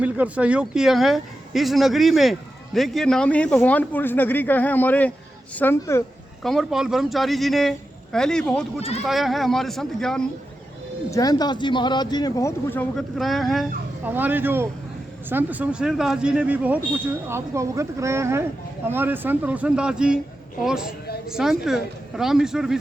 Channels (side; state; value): both; normal; correlation 0.90